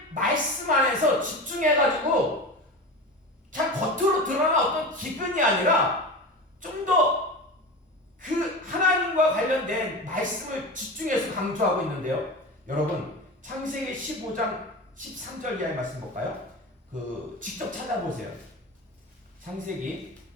말씀 안에서 집중해가지고 그냥 겉으로 드러난 어떤 기근이 아니라 좀 더 그 하나님과 관련된 말씀을 집중해서 강조하고 있는데요. 여러분 창세기 15장 13절 이하의 말씀 볼까요? 직접 찾아보세요. 창세기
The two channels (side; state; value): both; normal; correlation 0.28